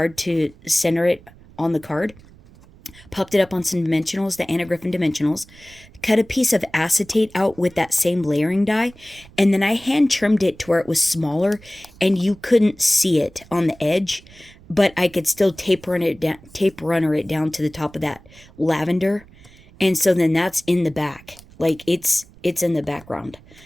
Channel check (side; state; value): right; noise; rumble, 24 dB below the sound